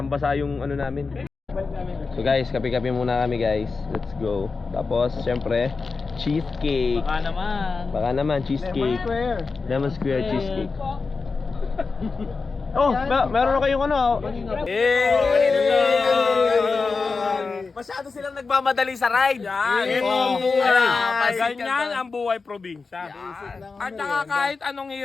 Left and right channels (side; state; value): right; quieter; 4.4 dB